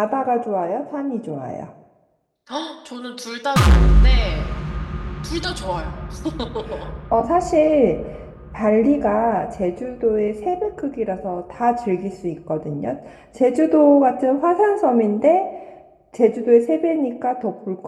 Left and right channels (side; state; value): both; identical; correlation 1.00